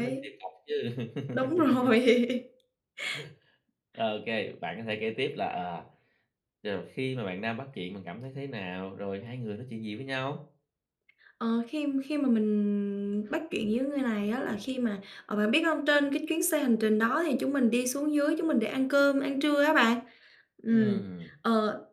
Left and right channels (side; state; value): both; identical; correlation 1.00